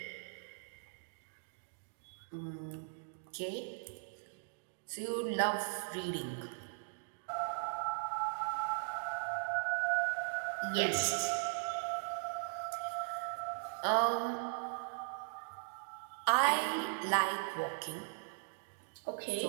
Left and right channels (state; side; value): silent; left; digital silence